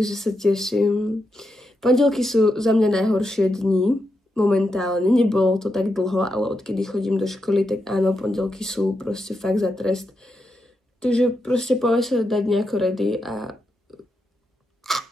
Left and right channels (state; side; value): normal; both; correlation 0.85